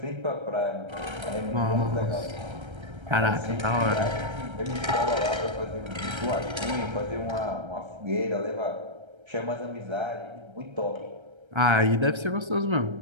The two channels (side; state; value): left; late; 1.3 ms